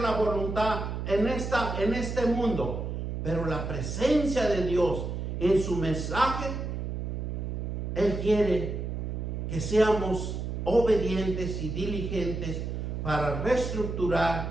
la voluntad en este mundo, pero la presencia de Dios en su mensaje, Él quiere que seamos obedientes y diligentes para reestructurar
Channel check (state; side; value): noise; right; hum, 4 dB below the sound